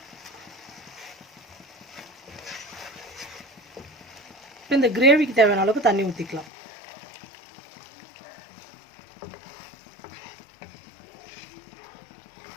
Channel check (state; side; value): drops out; right; at 6.5 s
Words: இப்போ இந்த கிரேவிக்கு தேவையான அளவுக்கு தண்ணி ஊற்றிக்கலாம்.